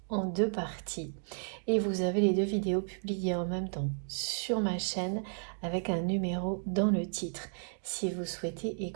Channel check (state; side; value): silent; left; digital silence